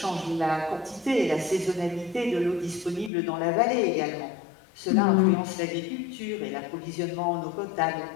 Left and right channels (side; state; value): right; drops out; at 3.1 s